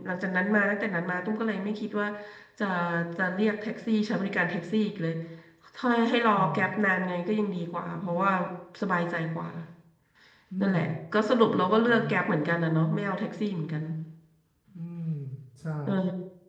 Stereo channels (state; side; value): identical; both; correlation 1.00